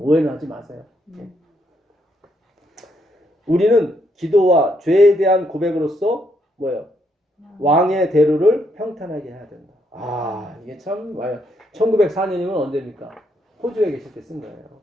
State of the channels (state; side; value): normal; both; correlation 0.75